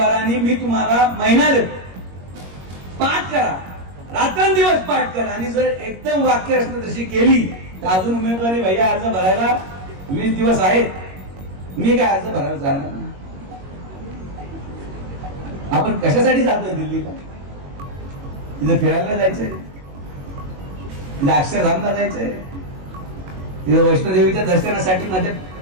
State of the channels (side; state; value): left; late; 21 ms